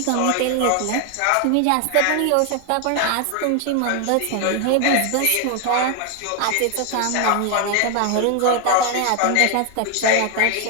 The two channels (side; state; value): both; different; correlation 0.01